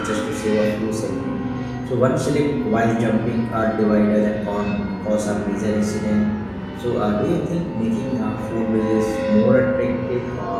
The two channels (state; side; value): identical; both; correlation 1.00